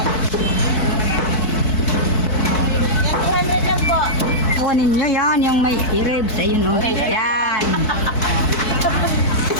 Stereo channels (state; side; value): late; right; 4.6 ms